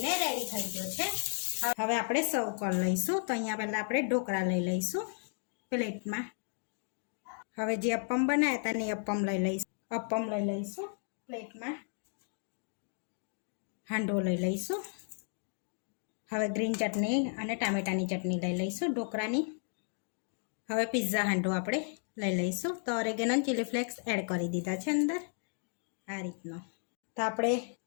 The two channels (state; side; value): silent; right; 55 dB below the other